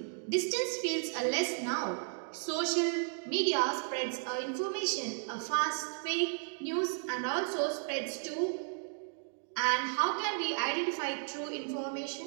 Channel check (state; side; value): silent; left; 55 dB below the other